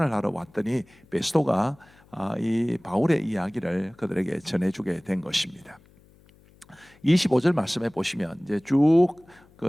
하러 왔더니 베스도가 이 바울의 이야기를 그들에게 전해주게 된 것입니다. 25절 말씀에 보시면 이제 쭉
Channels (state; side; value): noise; left; hum, 28 dB below the sound